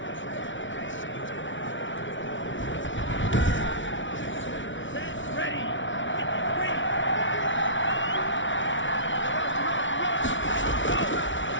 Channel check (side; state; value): right; late; 0.56 ms